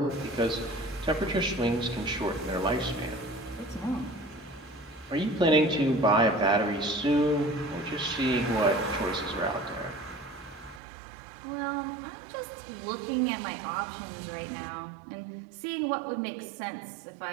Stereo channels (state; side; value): drops out; left; at 10.8 s